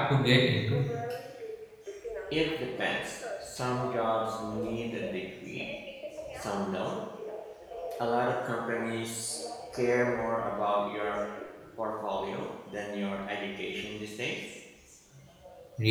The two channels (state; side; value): identical; both; correlation 1.00